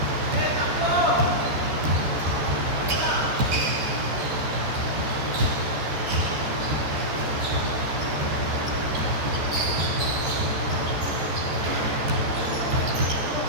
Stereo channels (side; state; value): left; late; 13 ms